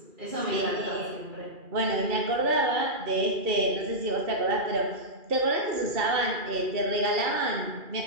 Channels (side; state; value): left; late; 2.4 ms